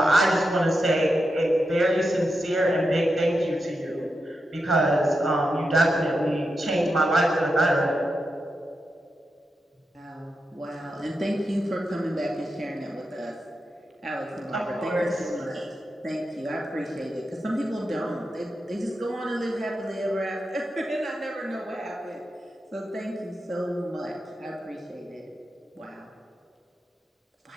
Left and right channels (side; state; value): both; normal; correlation 0.88